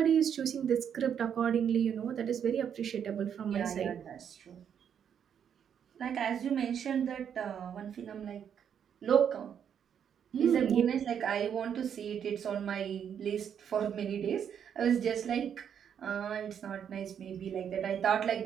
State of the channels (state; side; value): quieter; left; 8.3 dB